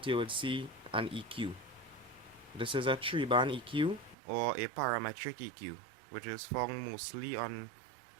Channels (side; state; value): left; drops out; at 4.2 s